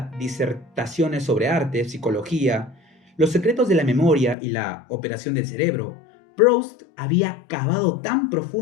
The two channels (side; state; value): right; drops out; at 4.4 s